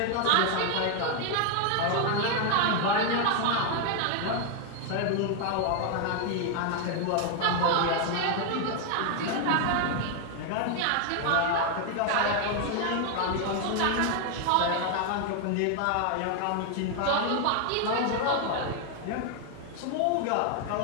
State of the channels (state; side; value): different; both; correlation 0.00